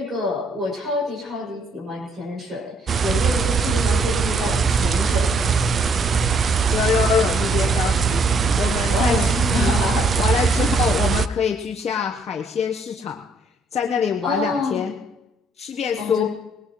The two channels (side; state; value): both; normal; correlation 0.67